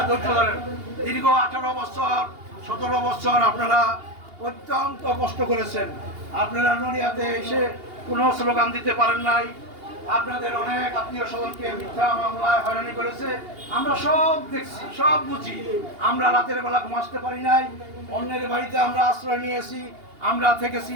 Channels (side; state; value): left; late; 2.8 ms